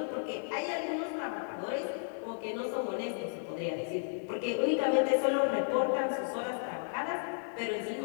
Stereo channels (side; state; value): right; silent; digital silence